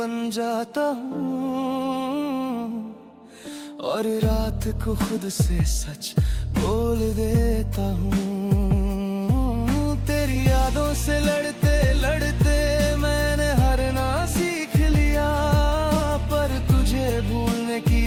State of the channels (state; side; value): identical; both; correlation 1.00